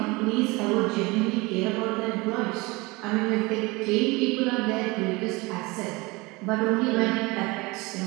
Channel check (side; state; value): left; quieter; 24.0 dB